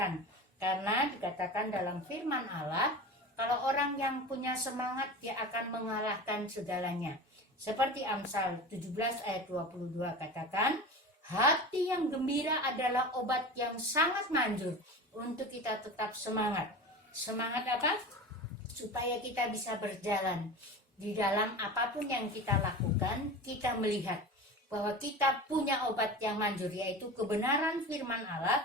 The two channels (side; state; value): both; normal; correlation 0.31